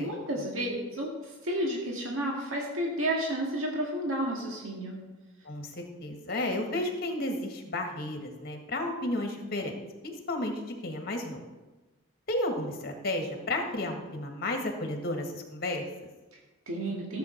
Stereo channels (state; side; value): normal; both; correlation 0.21